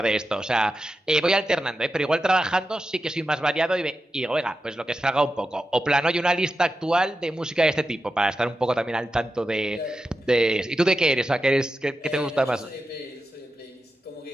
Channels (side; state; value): both; normal; correlation 0.90